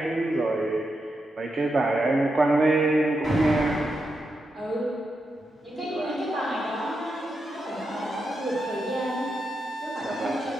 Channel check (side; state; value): both; normal; correlation 0.86